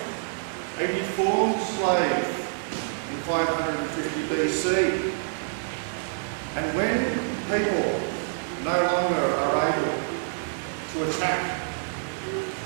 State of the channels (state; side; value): silent; left; 60 dB below the other